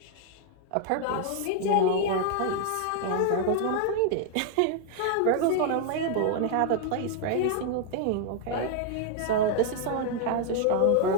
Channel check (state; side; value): different; both; correlation 0.00